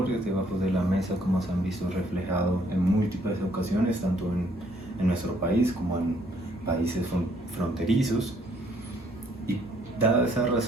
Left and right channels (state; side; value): normal; both; correlation 0.65